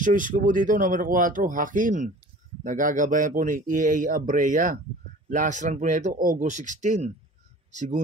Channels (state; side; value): normal; both; correlation 0.44